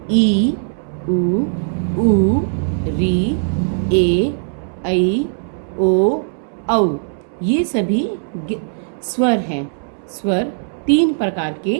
उ, री, ए, ऐ, ओ, औ। ये सभी स्वर हैं। स्वर 3 प्रकार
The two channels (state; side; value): silent; left; digital silence